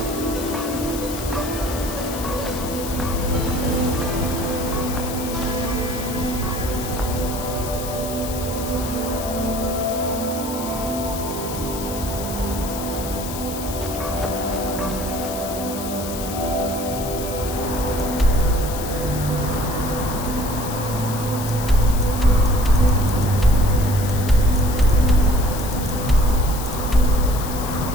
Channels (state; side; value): noise; left; hiss, 10 dB below the sound